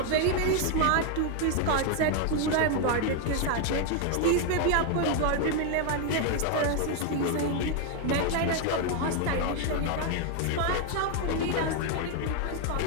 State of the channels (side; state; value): both; different; correlation 0.01